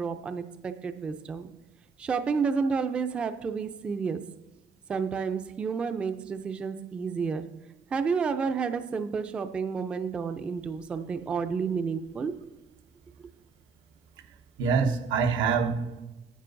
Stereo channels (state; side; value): quieter; left; 5.2 dB